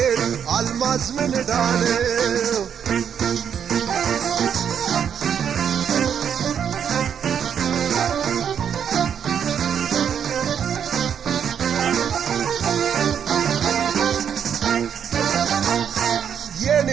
አልማዝ ምን ዳነው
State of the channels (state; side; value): quieter; left; 8.1 dB